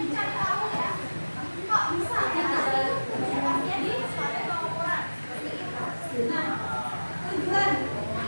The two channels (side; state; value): both; inverted; correlation -1.00